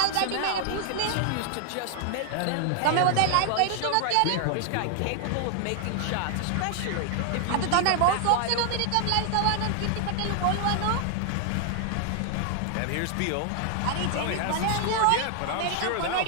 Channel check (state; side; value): different; both; correlation 0.00